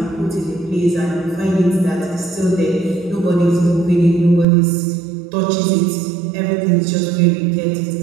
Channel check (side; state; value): left; drops out; at 4.5 s